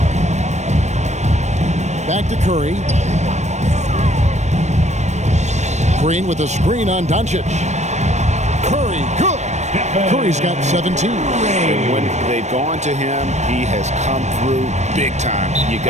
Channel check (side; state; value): left; late; 0.33 ms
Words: Back to Curry. Green with a screen on Doncic. Curry, good. Curry's got 17. And when they've gone to him, he has come through big time. You